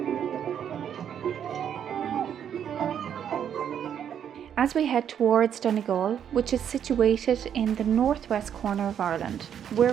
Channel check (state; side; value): quieter; left; 8.9 dB